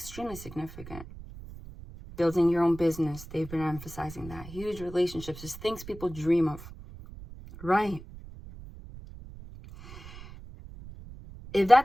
significant. Building your own business. They've been emphasizing that. Huge relationships. Just things people dream of. Right. If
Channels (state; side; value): noise; right; rumble, 15 dB below the sound